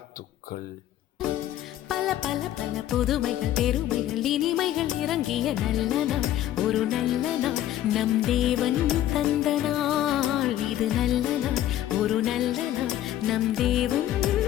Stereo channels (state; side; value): quieter; right; 12.7 dB